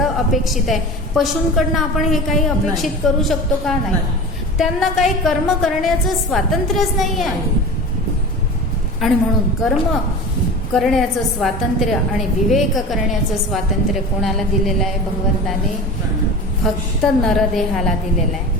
अपेक्षित आहे. पशूंकडनं आपण हे काही अपेक्षित करू शकतो का? नाही. त्यांना काही कर्म करण्याचं स्वातंत्र्यच नाही आहे. आणि म्हणून कर्म करण्याचं स्वातंत्र्य आणि विवेक करण्याचं स्वातंत्र्य कोणाला दिलेलं आहे? भगवंताने फक्त नरदेहाला दिलेलं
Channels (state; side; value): normal; both; correlation 0.33